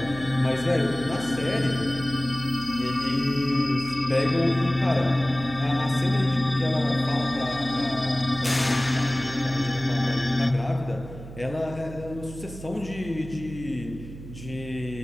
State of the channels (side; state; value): right; noise; hum, 13 dB below the sound